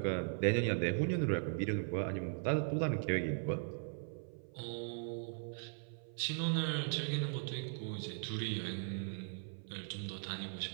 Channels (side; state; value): left; silent; 52 dB below the other